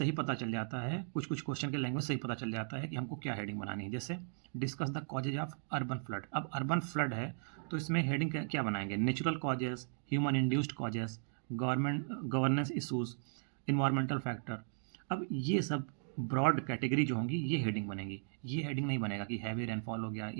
पता चल जाता है, कुछ कुछ क्वेश्चन के लैंग्वेज सही पता चल जाता है कि हमको क्या हेडिंग बनानी है। जैसे discuss the causes of urban flood. अब अर्बन फ्लड है तो इसमें हेडिंग क्या बनाएंगे? Natural causes, human induced causes, governance issues, environmental factor. अब ये सब ब्रॉड कैटेगरी जो होंगी ये हेडिंग बनेगी। ये हेडिंग नहीं बनेगा कि हैवी रेनफॉल हो गया,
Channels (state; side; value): silent; left; digital silence